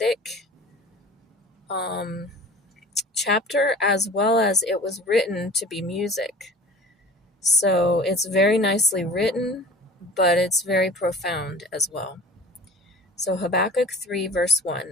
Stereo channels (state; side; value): normal; both; correlation 0.42